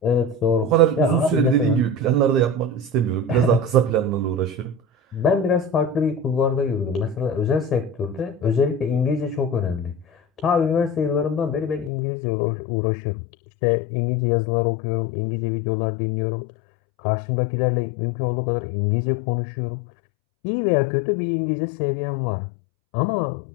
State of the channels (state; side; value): drops out; right; at 11.9 s